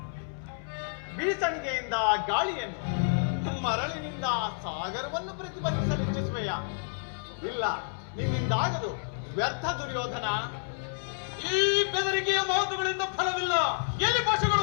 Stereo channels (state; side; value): silent; right; 58 dB below the other